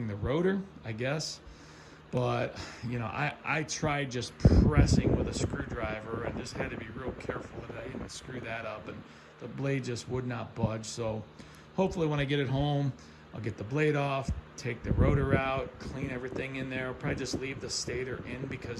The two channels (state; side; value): identical; both; correlation 1.00